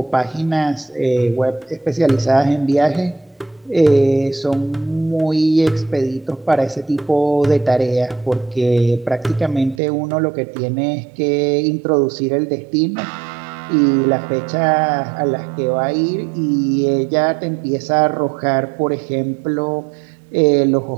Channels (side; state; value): left; drops out; at 9.8 s